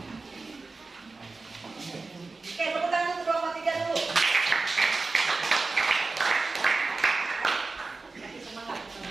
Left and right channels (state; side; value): quieter; left; 3.8 dB